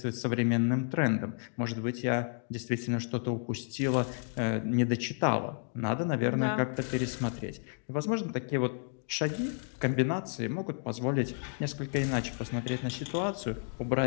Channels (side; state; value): right; silent; 55 dB below the other